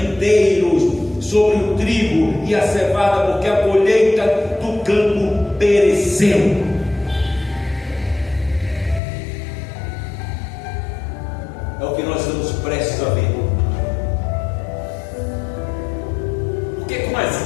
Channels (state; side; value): drops out; right; at 9.0 s